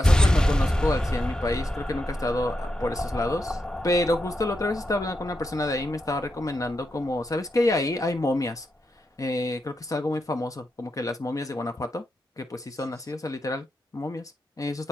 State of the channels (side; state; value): both; normal; correlation 0.85